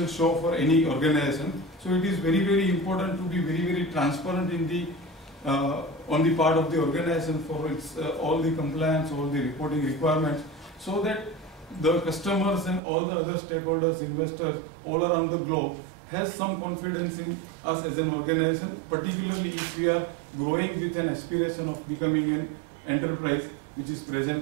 show for any organization. So it is very important to be very transparent in the on the part of the organization for its all the compliance, all the reporting requirements, so that the customers and all the other stakeholders, investors all around the globe has some confidence in us as an organization, particularly if we are growing with an aspiration of becoming an enterprise which is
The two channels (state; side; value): drops out; left; at 12.8 s